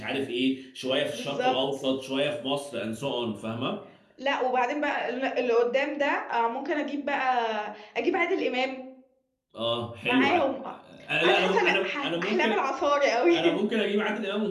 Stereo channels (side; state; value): both; identical; correlation 1.00